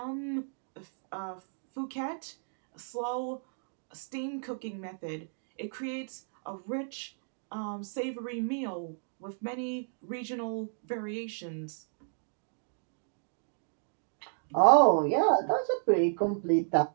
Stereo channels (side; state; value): left; silent; digital silence